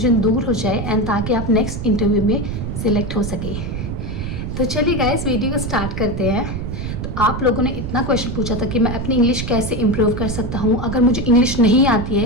दूर हो जाए एंड ताकि आप नेक्स्ट इंटरव्यू में सिलेक्ट हो सके। तो चलिए गाइस, वीडियो को स्टार्ट करते हैं। तो आप लोगों ने इतना क्वेश्चन पूछा था कि मैं अपनी इंग्लिश कैसे इम्प्रूव कर सकता हूँ, अगर मुझे इंग्लिश नहीं आती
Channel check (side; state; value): right; noise; rumble, 5 dB below the sound